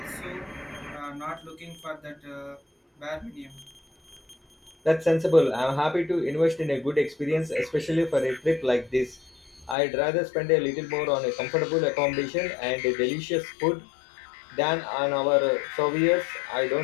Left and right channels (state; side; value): drops out; right; at 9.8 s